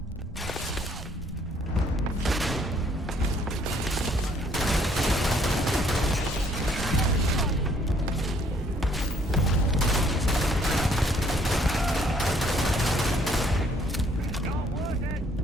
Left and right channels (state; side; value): normal; both; correlation 0.64